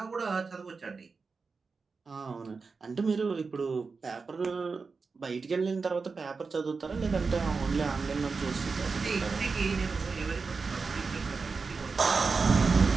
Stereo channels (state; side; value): quieter; left; 4.6 dB